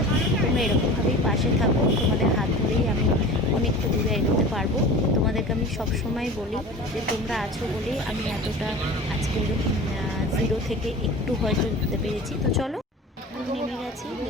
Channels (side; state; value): both; normal; correlation 0.37